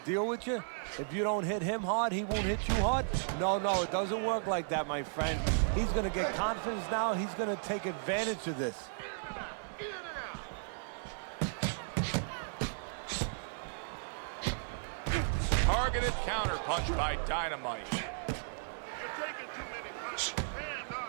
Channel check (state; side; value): silent; left; 54 dB below the other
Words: deal with you? If you don't hit him hard, he won't hit you hard? No, it doesn't work like that, my friend. He's going to get confidence now. He's going to take advantage of this. Targeted counterpunch by Dynamite. You're taking too many punches. Hands